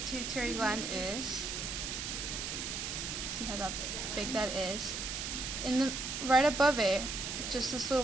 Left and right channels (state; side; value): noise; right; hiss, 4 dB below the sound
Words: gland is. See how big that is. Right above it, just this little